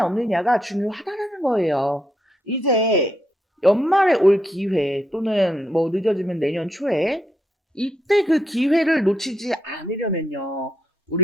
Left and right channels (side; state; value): both; normal; correlation 0.79